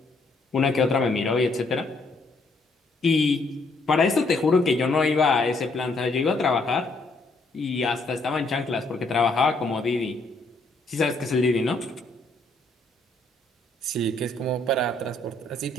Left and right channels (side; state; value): right; quieter; 3.1 dB